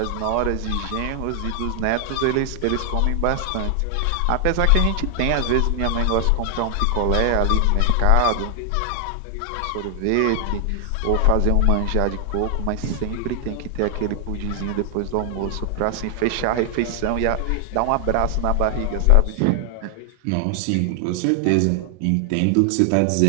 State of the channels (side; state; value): both; different; correlation 0.00